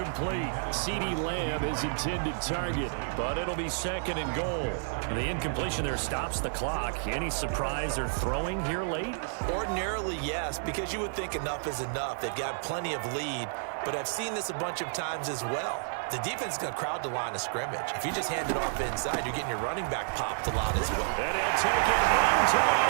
CeeDee Lamb is intended target, but it'll be 2nd and goal. And the incompletion there stops the clock. Any surprise they're throwing here late? Ordinarily, yes, because you would think enough is enough. They've got plenty of lead, but I've seen this a bunch of times as well. The defense is going to crowd the line of scrimmage. If you just hand it off inside, you're getting your running back popped a lot as well. And he'll take it into the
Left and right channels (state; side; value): silent; left; 58 dB below the other